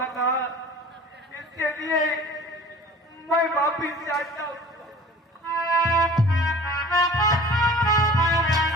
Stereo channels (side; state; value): both; normal; correlation 0.43